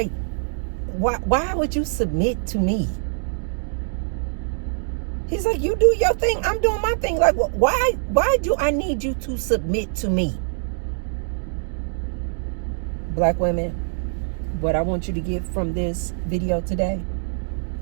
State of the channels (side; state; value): left; silent; digital silence